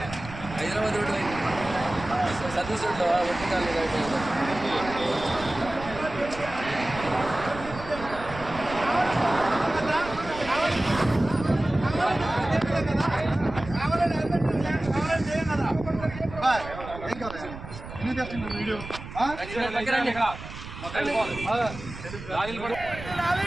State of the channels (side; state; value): right; noise; rumble, 12 dB below the sound